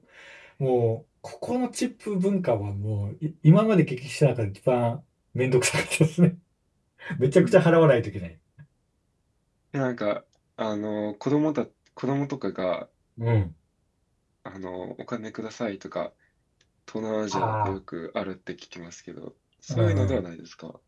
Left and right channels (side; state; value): both; identical; correlation 1.00